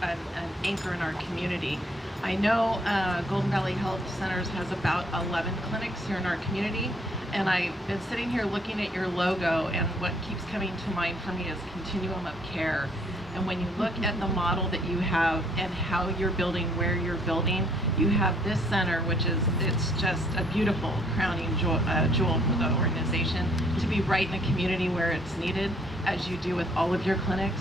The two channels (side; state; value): both; normal; correlation 0.64